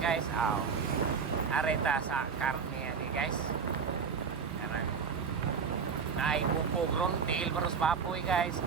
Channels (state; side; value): quieter; left; 6.0 dB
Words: aw. Areta sa karne ani guys. Karang naay bukog ron tail baros papoy guys,